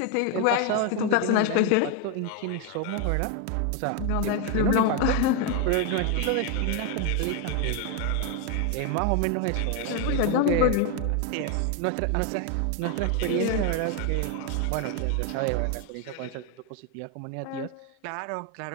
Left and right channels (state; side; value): different; both; correlation 0.01